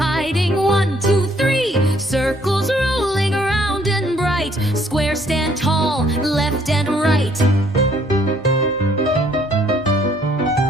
1, 2, 3. Circles rolling around and bright. Squares stand tall, left and right.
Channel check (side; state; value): both; normal; correlation 0.64